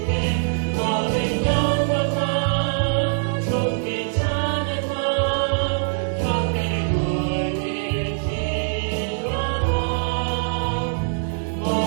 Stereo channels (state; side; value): silent; left; 64 dB below the other